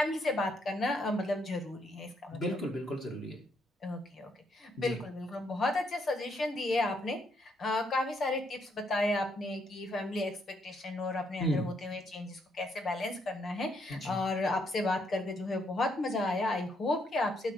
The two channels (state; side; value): normal; both; correlation 0.74